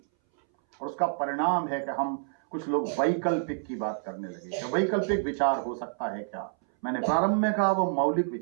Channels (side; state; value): left; silent; 59 dB below the other